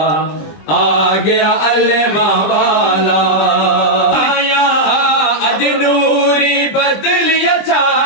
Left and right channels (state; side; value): late; right; 20 ms